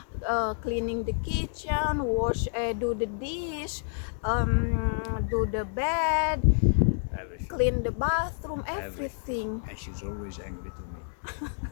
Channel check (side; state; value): right; silent; 59 dB below the other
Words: cleaning the kitchen, do the dish, do the bed, Everything. clean the bathroom, everything. And she's always angry to me.